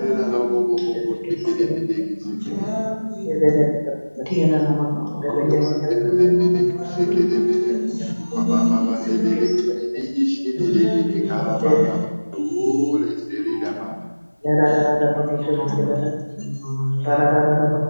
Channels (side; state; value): both; inverted; correlation -1.00